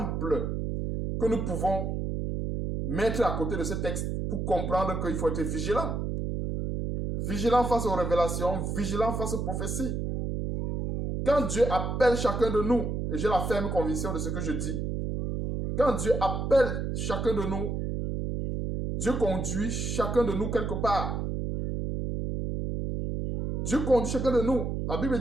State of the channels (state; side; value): noise; right; hum, 2 dB below the sound